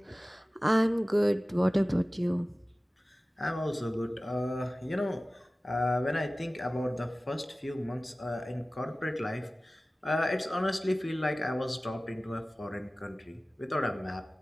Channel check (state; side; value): normal; both; correlation 0.97